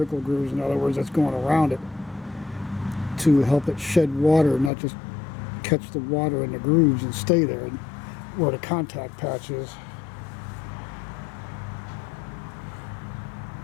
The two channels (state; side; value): drops out; right; at 4.7 s